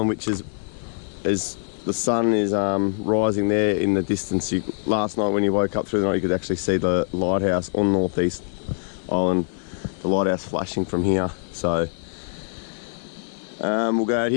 which is, as the sun is rising there in the distance. Last night when you woke up through the night, you could actually see the lighthouse on Groote Eylandt, the lighthouse flashing from here. So we'll go out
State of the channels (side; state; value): right; silent; digital silence